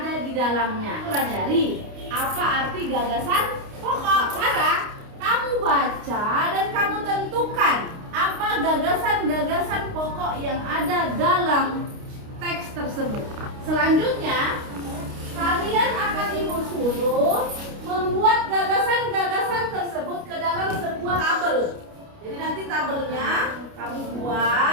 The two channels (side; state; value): left; late; 29 ms